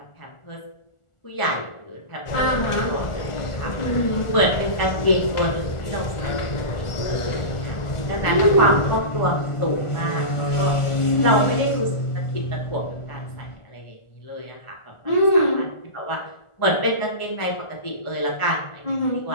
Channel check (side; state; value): right; late; 1.4 ms